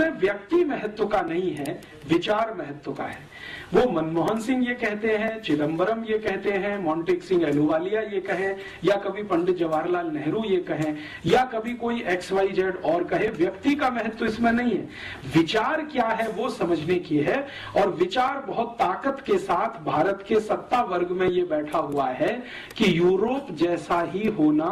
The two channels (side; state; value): both; identical; correlation 1.00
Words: व्यक्ति महत्व का नहीं है, विचार महत्व का है। वो मनमोहन सिंह ये कहते हैं, चिदम्बरम ये कहते हैं, मोंटेक सिंह अहलूवालिया ये कहें, या कभी पंडित जवाहरलाल नेहरू ये कहें, या कभी कोई XYZ और कहे, व्यक्ति का महत्व इसमें नहीं है। विचार क्या है वो समझने की है। और विचार बहुत ताकत के साथ भारत के सत्ता वर्ग में ये बैठा हुआ है कि यूरोप जैसा ही होना